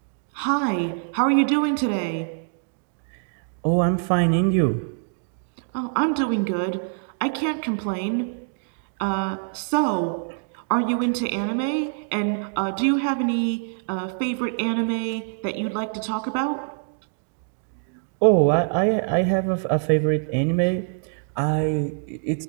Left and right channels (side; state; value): left; silent; digital silence